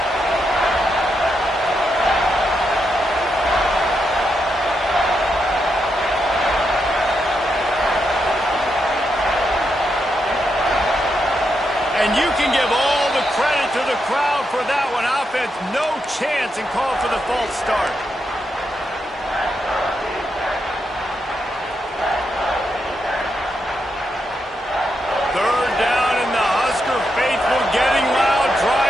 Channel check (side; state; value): both; normal; correlation 0.83